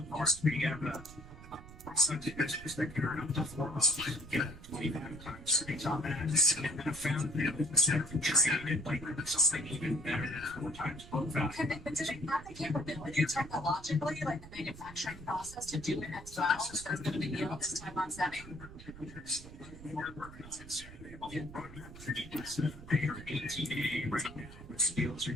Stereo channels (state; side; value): noise; right; rumble, 16 dB below the sound